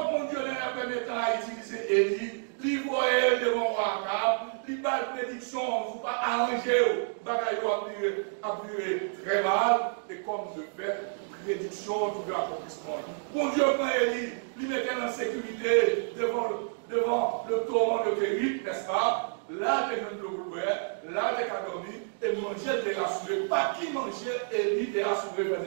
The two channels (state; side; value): silent; left; digital silence